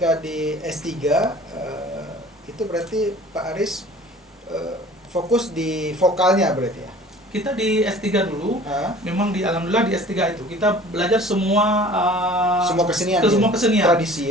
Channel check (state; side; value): normal; both; correlation 0.46